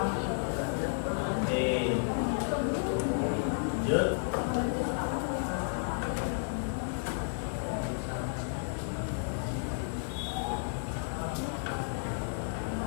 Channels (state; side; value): silent; right; 56 dB below the other